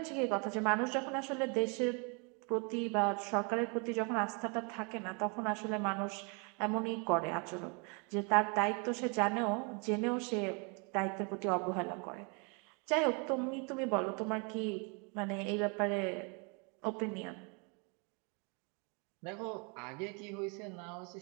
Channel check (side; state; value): left; quieter; 33.6 dB